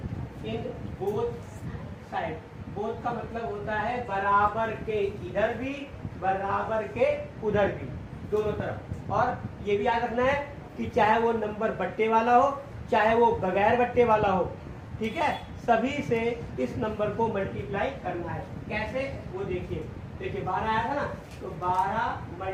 in both side. Both का मतलब होता है बराबर के इधर भी, बराबर के उधर भी, दोनों तरफ। और ये भी याद रखना है कि चाहे वो नंबर बट्टे वाला हो चाहे वो बगैर बट्टे वाला हो, ठीक है, सभी से इस नंबर को मल्टीप्लाई करना है। कैसे, वो देखिए। देखिए 12 आया था ना, तो 12 ×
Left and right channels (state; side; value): identical; both; correlation 1.00